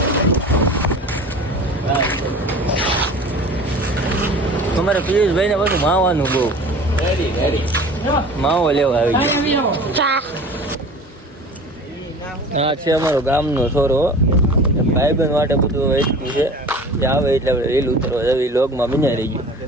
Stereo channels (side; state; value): both; normal; correlation 0.40